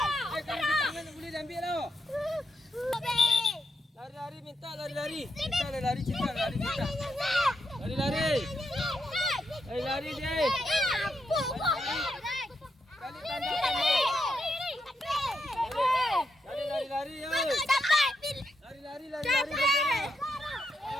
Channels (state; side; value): normal; both; correlation 0.82